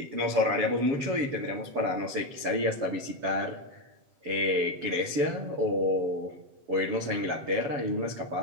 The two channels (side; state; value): left; late; 7.2 ms